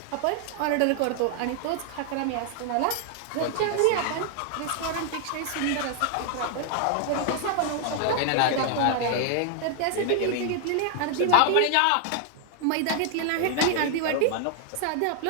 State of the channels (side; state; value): both; different; correlation 0.00